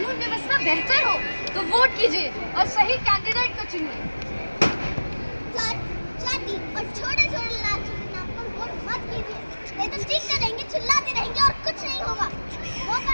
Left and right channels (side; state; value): both; inverted; correlation -1.00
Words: व्यवस्था बेहतर हो, तो वोट कीजिए और सही कैंडिडेट को चुनिए। जाति और छोटे छोटे लालची के नाम पर वोट मत कीजिए, नहीं तो चीखते रहेंगे, चिल्लाते रहेंगे और कुछ नहीं होगा। मौका